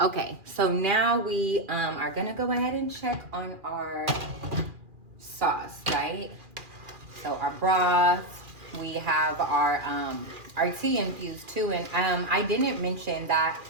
Okay, so now we are gonna go ahead and check on our sauce, right? So our broth, we have our tea infused too, and I didn't mention that.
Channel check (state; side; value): late; left; 2.4 ms